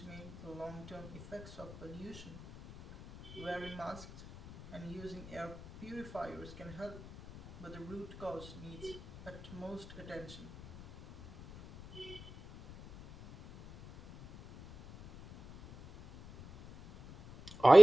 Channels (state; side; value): noise; left; rumble, 15 dB below the sound